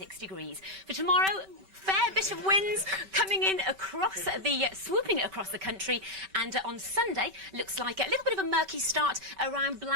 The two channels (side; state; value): left; late; 5.2 ms